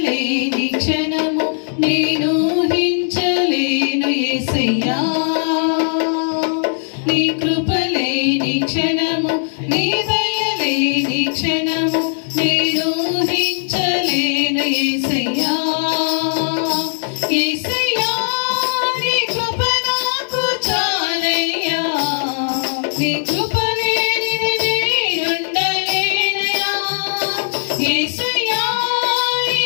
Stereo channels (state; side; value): silent; right; digital silence